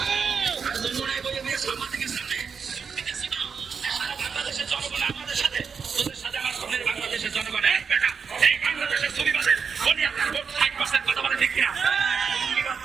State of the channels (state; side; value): quieter; left; 6.0 dB